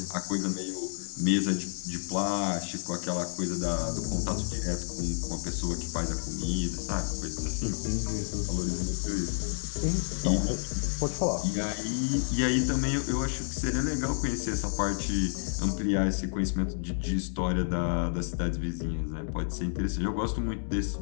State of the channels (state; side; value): silent; right; digital silence